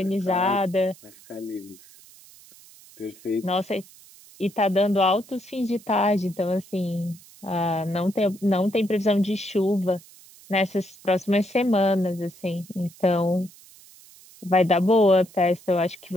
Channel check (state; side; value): noise; right; hiss, 23 dB below the sound